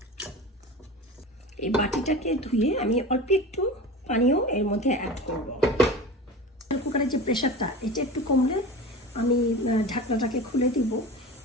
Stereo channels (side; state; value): both; normal; correlation 0.32